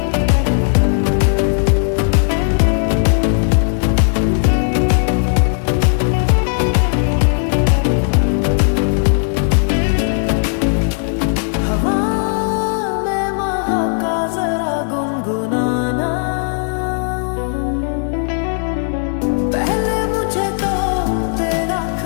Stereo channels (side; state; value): right; silent; 66 dB below the other